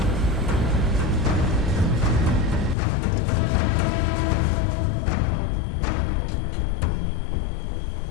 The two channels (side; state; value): right; drops out; at 2.8 s